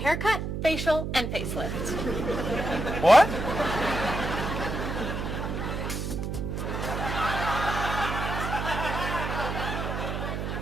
facial, and facelift. What?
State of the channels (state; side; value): noise; right; hum, 3 dB below the sound